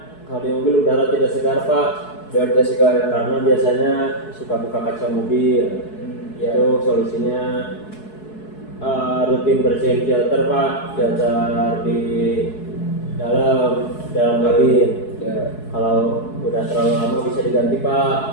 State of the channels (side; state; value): right; late; 4.7 ms